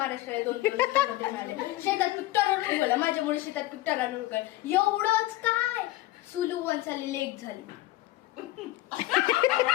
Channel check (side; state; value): right; quieter; 17.6 dB